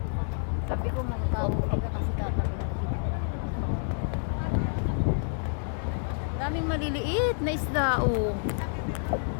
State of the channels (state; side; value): silent; right; digital silence